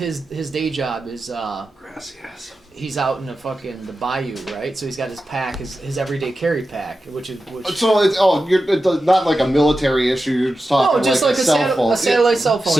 day job is Gracias. he's out in the bayou, right? So he's got his pack, his everyday carry pack, which. So it's not like a military issue. You're just talking No, just like like a cell phone. a satellite cell phone.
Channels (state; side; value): normal; both; correlation 0.92